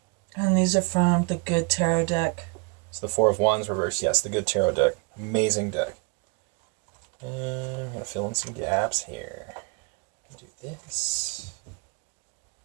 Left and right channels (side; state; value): left; quieter; 30.9 dB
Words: And these are from the Good Tarot deck. So the Four of Wands reversed. Yes, the Good Tarot deck. Amazing deck. And I'm going to fill in some gaps here. Do this.